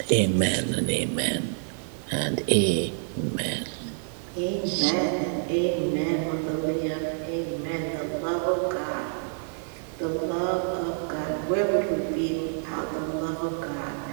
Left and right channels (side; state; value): left; silent; 59 dB below the other